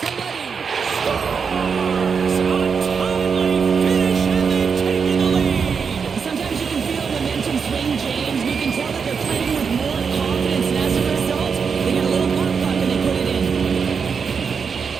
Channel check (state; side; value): quieter; left; 5.9 dB